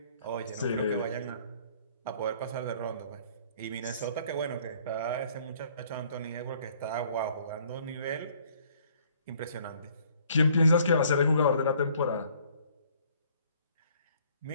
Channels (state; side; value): inverted; both; correlation -0.60